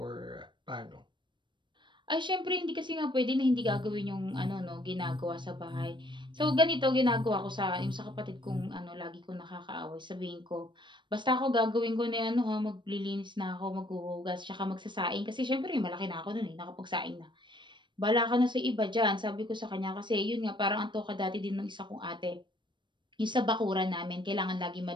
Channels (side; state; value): left; late; 0.23 ms